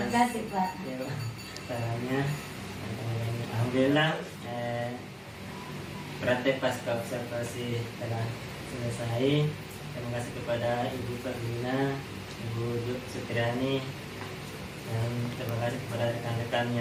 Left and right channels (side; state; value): both; identical; correlation 1.00